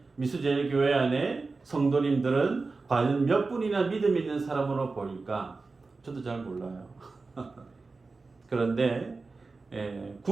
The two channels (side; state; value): left; quieter; 3.9 dB